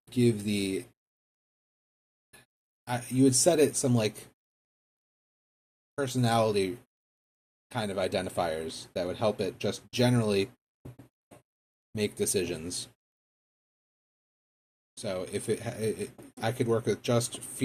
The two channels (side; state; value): both; identical; correlation 1.00